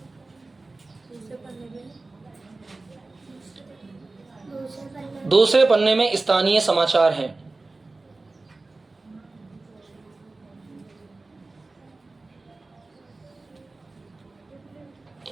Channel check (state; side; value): quieter; left; 3.4 dB